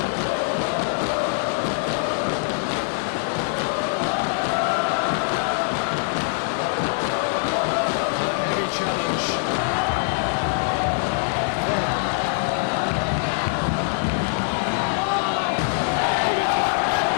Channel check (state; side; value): silent; right; 63 dB below the other